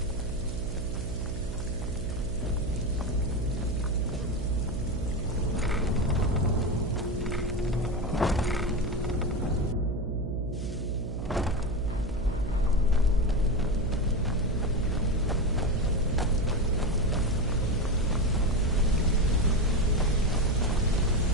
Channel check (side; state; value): right; noise; hum, 6 dB below the sound